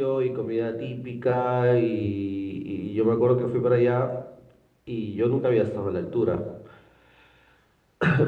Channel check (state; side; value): identical; both; correlation 1.00